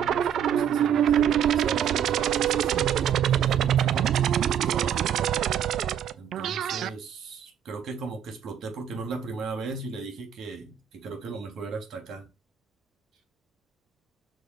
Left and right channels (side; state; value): left; quieter; 9.0 dB